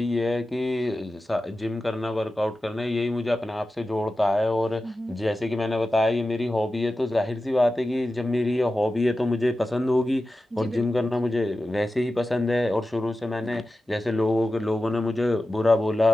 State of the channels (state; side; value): normal; both; correlation 0.93